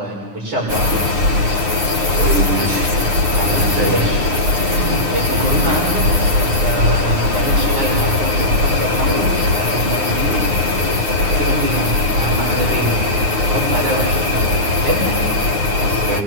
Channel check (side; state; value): left; late; 9.7 ms